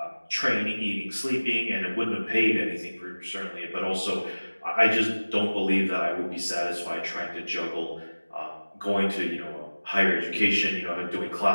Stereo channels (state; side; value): inverted; both; correlation -1.00